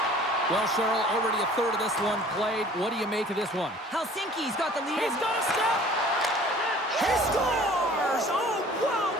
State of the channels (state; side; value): normal; both; correlation 0.50